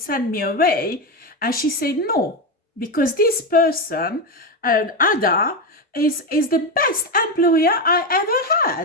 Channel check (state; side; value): normal; both; correlation 0.12